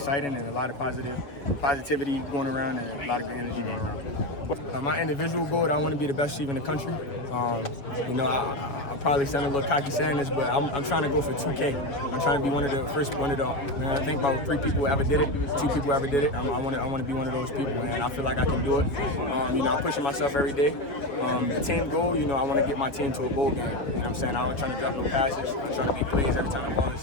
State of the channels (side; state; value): right; late; 7.1 ms